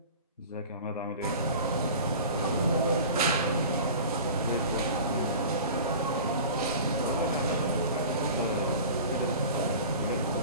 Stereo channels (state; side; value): inverted; both; correlation -0.38